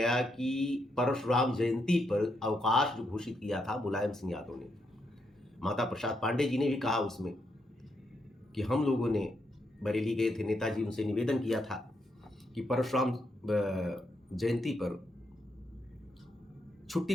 कि परशुराम जयंती पर अवकाश जो घोषित किया था मुलायम सिंह यादव ने, माता प्रसाद पांडे जी ने भी कहा उसमें कि हम लोगों ने बरेली गए थे, नेताजी उनसे निवेदन किया था कि परशुराम जयंती पर छुट्टी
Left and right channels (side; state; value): both; normal; correlation 0.80